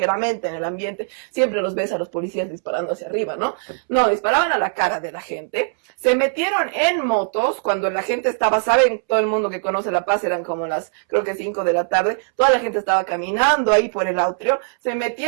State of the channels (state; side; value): silent; left; 65 dB below the other